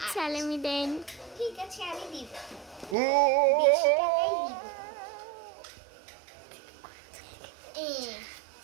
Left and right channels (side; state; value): left; drops out; at 3.0 s